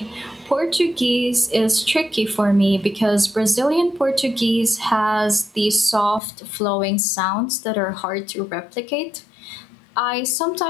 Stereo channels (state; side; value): drops out; right; at 6.2 s